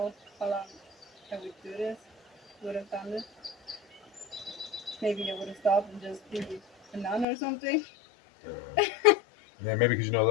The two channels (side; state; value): right; drops out; at 7.2 s